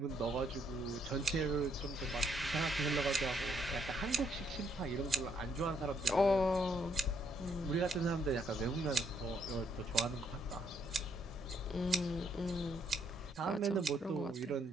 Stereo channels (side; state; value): both; normal; correlation 0.71